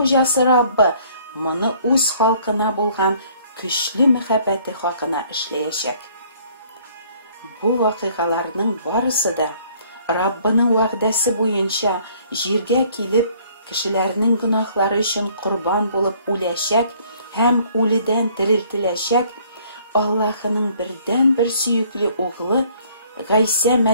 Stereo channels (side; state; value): both; inverted; correlation -0.59